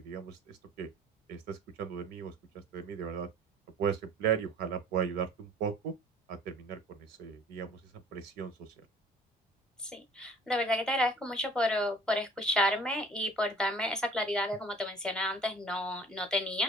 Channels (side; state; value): both; normal; correlation 0.50